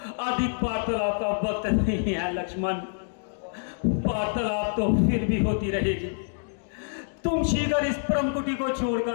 अधिक वार्तालाप का वक्त नहीं है। लक्ष्मण, वार्तालाप तो फिर भी होती रहेगी। तुम शीघ्र इस परम कुटी को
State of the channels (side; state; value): right; silent; digital silence